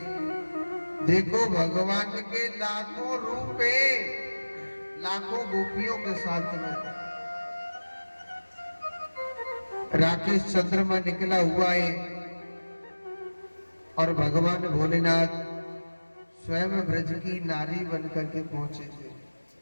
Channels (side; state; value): both; inverted; correlation -1.00